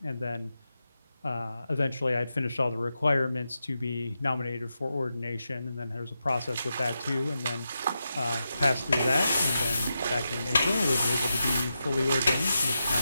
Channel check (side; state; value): both; inverted; correlation -0.88